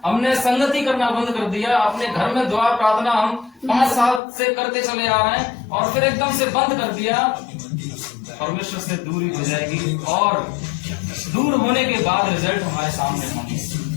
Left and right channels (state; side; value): drops out; right; at 4.2 s